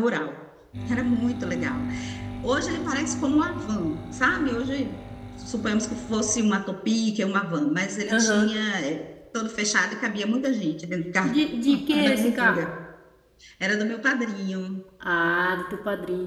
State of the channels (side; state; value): both; identical; correlation 1.00